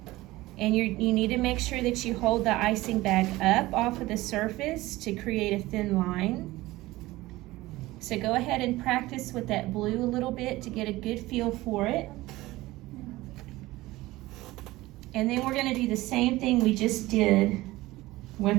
And you need to make sure that you hold the icing bag up off of the surface to create a thin line. So go ahead and practice with that blue a little bit to get a good feel for it. And then we're going to do the same thing we just did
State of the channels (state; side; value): quieter; left; 18.6 dB